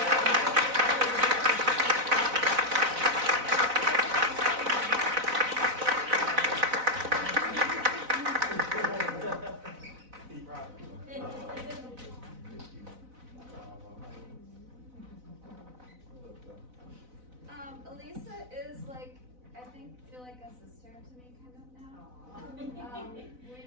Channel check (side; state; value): left; late; 4.0 ms